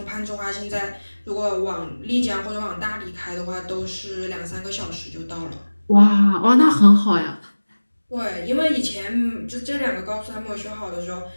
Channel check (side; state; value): both; inverted; correlation -1.00